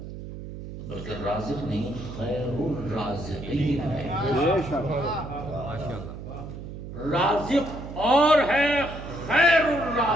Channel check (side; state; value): right; noise; hum, 10 dB below the sound